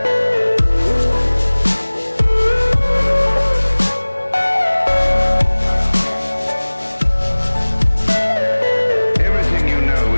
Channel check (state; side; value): inverted; both; correlation -1.00